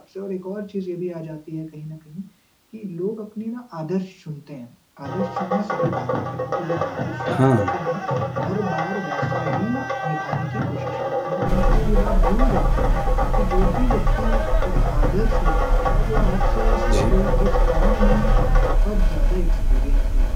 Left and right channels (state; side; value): identical; both; correlation 1.00